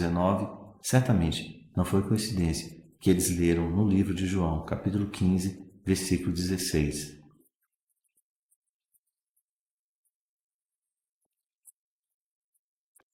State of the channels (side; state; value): both; identical; correlation 1.00